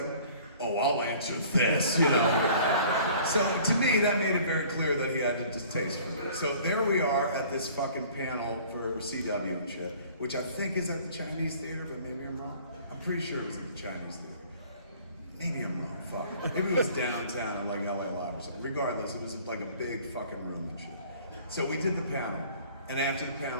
oh, I'll answer this, you know? So, to me, that made it very clear that he had a distaste for me. So, there we are at this fucking panel for CW and shit, which I think is at the Chinese Theater, but maybe I'm wrong. I'm pretty sure it was at the Chinese Theater. Maybe I'm wrong, fuck. Maybe it was downtown, like LA Live or something. Regardless, it was like a big fucking room and shit. So we did the panel. And after the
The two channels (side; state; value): both; inverted; correlation -0.51